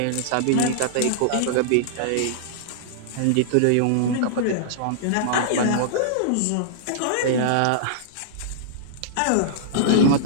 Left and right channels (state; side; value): different; both; correlation -0.02